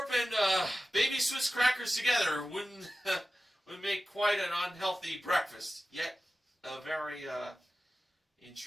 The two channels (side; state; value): both; normal; correlation 0.95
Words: and Baby Swiss crackers together wouldn't make quite an unhealthy breakfast, yet a very